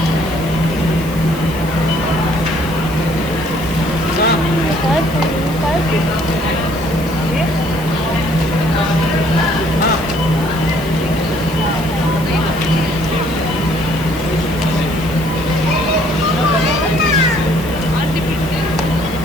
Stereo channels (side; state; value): right; noise; hiss, 16 dB below the sound